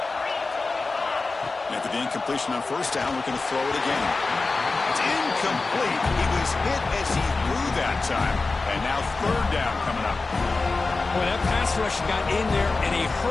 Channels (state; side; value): quieter; right; 3.8 dB